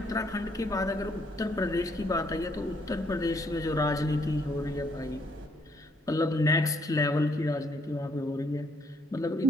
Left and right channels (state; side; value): normal; both; correlation 0.69